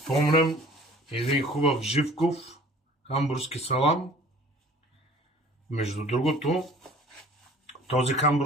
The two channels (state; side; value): normal; both; correlation 0.49